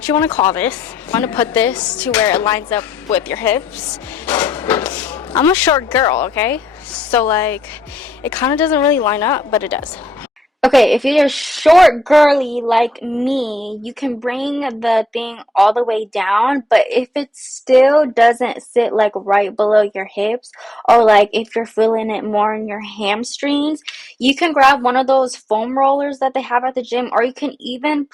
you want to call this. I want to put this to where it lines up with your hips. I'm a short girl, okay? So like, it kind of doesn't really line up, but it does. Okay, if you're short girly like me, you can bring the thing all the way down, but if it still doesn't sit like right below your hips, or like if you're feeling it more in your hamstrings, you can grab one of those foam rollers that they have at the gym, or you can even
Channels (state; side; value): normal; both; correlation 0.79